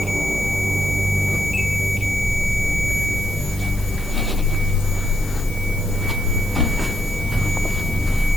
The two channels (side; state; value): left; noise; hiss, 16 dB below the sound